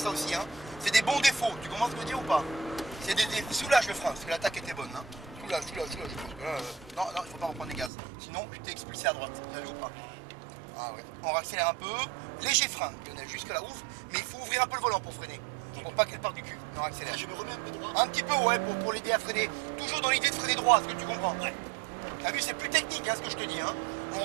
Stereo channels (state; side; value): drops out; left; at 7.9 s